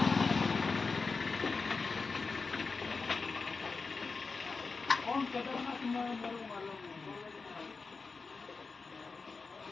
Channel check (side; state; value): right; quieter; 4.4 dB